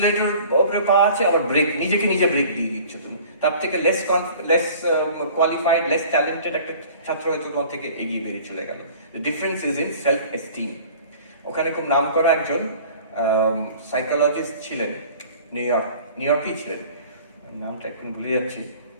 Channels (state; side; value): inverted; both; correlation -0.47